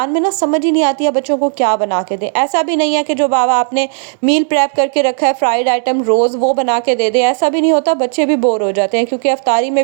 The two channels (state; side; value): silent; left; digital silence